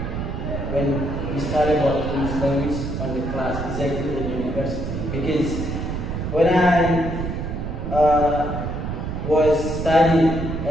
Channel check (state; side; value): noise; right; rumble, 4 dB below the sound